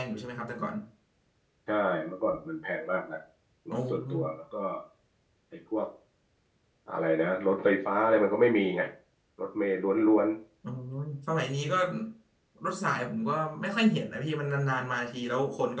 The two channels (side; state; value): both; identical; correlation 1.00